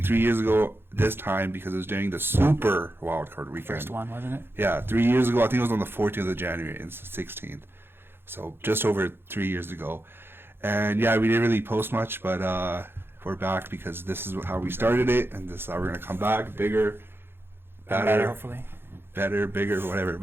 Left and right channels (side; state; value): left; late; 0.11 ms